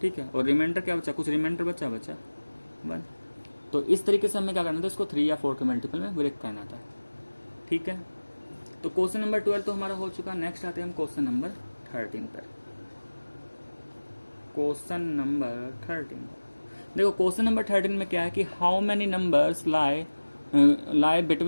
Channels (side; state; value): both; inverted; correlation -1.00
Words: ठीक है। और रिमाइंडर क्या बचा, कुछ रिमाइंडर बचा 1। तो इस तरीके से हमें क्या करना था, इसको 3 या 4 के मल्टीपल में ब्रेक करना था, ठीक है। तो क्वेश्चन नंबर 12 तो हमारा हो चुका। नेक्स्ट आते हैं हम क्वेश्चन नंबर 13 पर। क्वेश्चन नंबर 13, देखो क्वेश्चन नंबर 13 में क्या है कि how many numbers lie